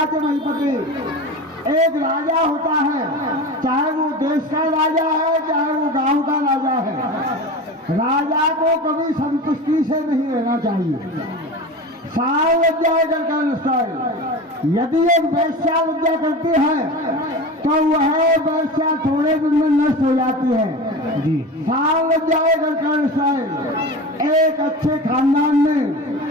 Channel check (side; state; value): both; normal; correlation 0.30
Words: के नहीं पति। एक राजा होता है, चाहे वो देश का राजा है चाहे वो गांव का राजा है। राजा को कभी संतुष्टि से नहीं रहना चाहिए। साल लग जाएगा कर। यदि एक वैश्या लज्जा करती है तो वह वैश्या थोड़े दिन में नष्ट हो जाती है जी। साल लग जाएगा कर। एक अच्छे खानदान